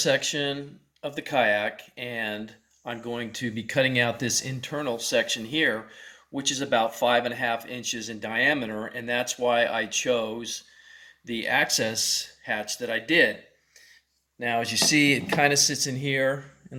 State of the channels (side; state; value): both; identical; correlation 1.00